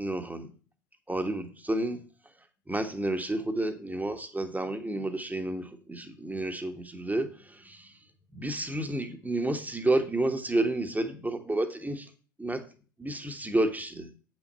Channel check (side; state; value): both; normal; correlation 0.81